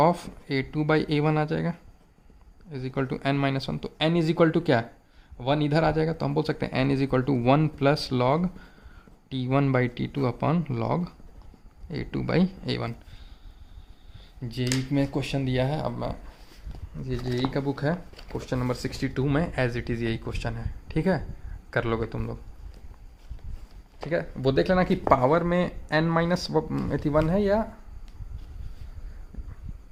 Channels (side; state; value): both; identical; correlation 1.00